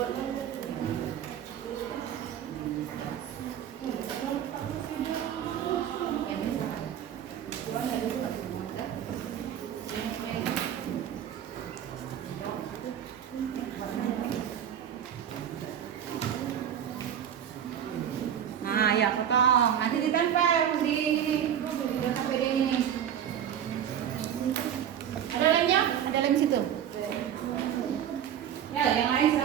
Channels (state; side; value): quieter; left; 9.6 dB